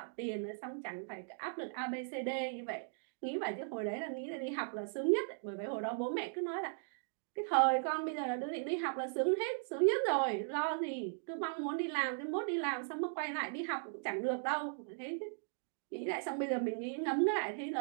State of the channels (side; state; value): left; silent; digital silence